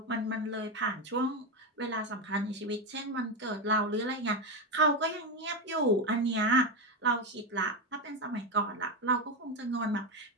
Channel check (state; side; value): normal; both; correlation 0.11